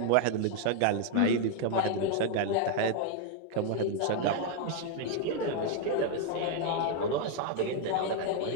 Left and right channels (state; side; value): different; both; correlation 0.00